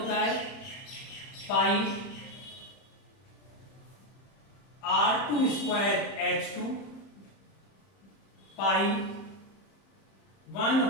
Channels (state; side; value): late; right; 31 ms